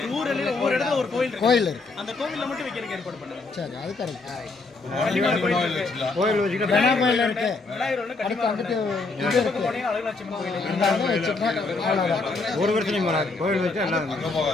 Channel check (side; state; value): right; quieter; 3.7 dB